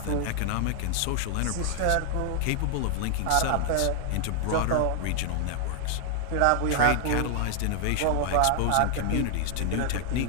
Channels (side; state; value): both; different; correlation 0.00